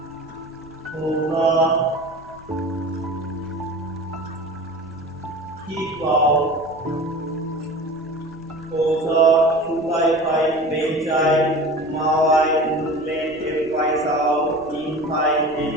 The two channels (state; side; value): noise; left; rumble, 23 dB below the sound